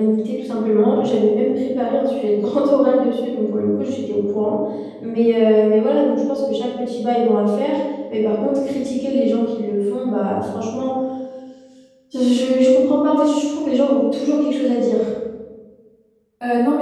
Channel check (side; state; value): both; identical; correlation 1.00